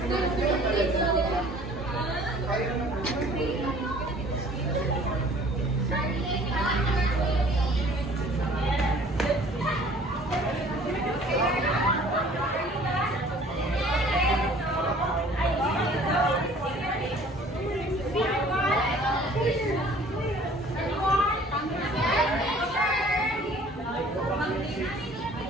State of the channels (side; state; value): both; normal; correlation 0.52